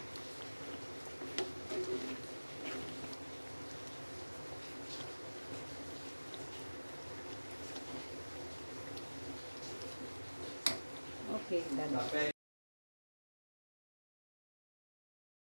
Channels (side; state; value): both; inverted; correlation -1.00